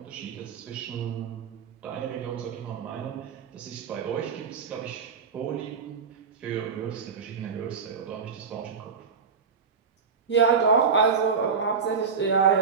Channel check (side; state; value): left; quieter; 5.8 dB